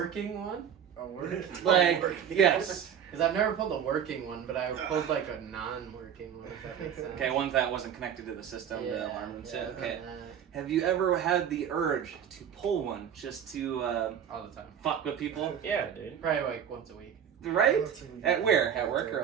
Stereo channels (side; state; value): left; quieter; 8.5 dB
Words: one? A word? Like, yes. Because I've never pulled a working one, but I pulled like a non-working one, if that makes sense. Okay, one that wasn't connected to the system, the alarm and shit. Okay. Uh, Have you ever had the urge to pull one just to all the time. fuck with people? Yeah, dude. Probably like once a week. Right? At where? At work